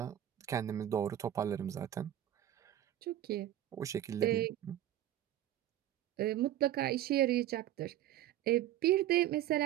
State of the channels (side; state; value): left; quieter; 12.5 dB